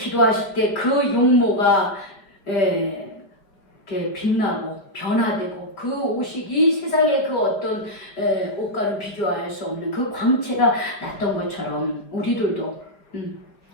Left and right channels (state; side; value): late; right; 4.8 ms